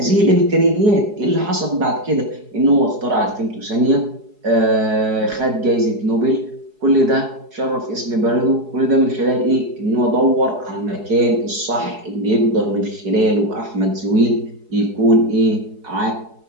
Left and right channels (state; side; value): late; left; 4.7 ms